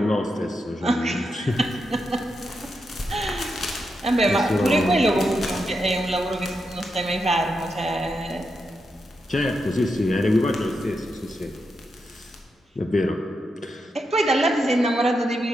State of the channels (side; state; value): both; normal; correlation 0.85